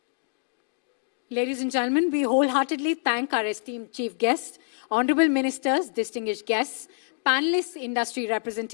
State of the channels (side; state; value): right; silent; digital silence